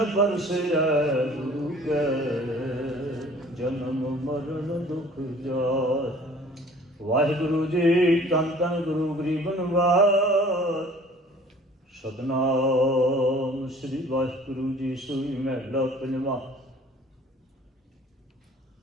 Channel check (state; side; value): normal; both; correlation 0.51